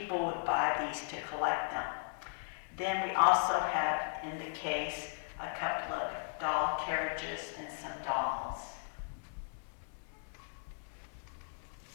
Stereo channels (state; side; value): silent; right; digital silence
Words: would buy these to collect them. Then we also have in the case a couple of doll carriages and some dolls.